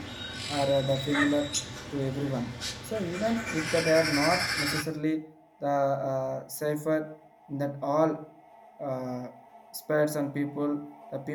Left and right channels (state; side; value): identical; both; correlation 1.00